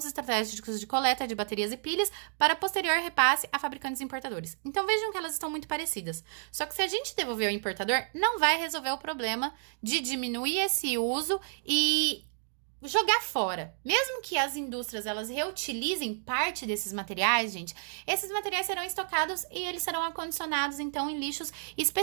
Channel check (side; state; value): left; silent; digital silence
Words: estratégicos de coleta de baterias e pilhas para posterior repasse a fabricantes e importadores. Então vejam que elas estão muito parecidas. Só que se a gente devolver ao importador, não vai resolver o problema de diminuir esse uso e jogar fora. Mesmo que as indústrias elas reutilizem parte desses materiais, gente, esses materiais serão estocados e eles serão acondicionados então em lixos